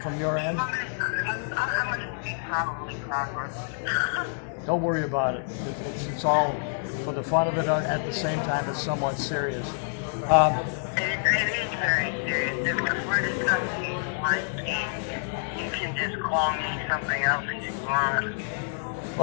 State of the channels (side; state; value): right; silent; digital silence